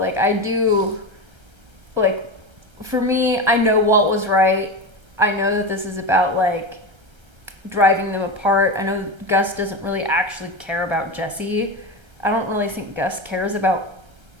I do, like, for me, I know Walt was right. I know that this is about like driving them apart. I know Gus doesn't really actually care about Jesse. I don't really think Gus cares about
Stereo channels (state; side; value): late; left; 1.3 ms